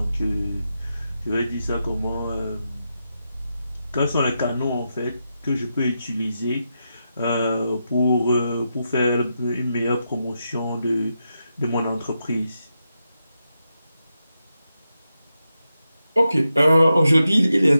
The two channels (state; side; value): inverted; both; correlation -0.87